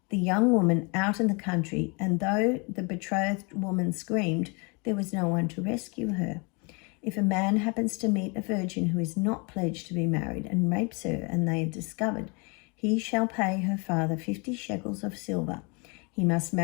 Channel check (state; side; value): quieter; right; 31.2 dB